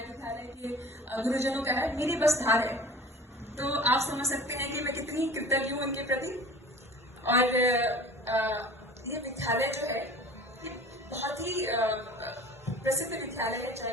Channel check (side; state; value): both; normal; correlation 0.43